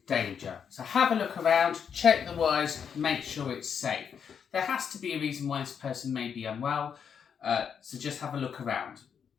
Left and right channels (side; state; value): right; quieter; 7.3 dB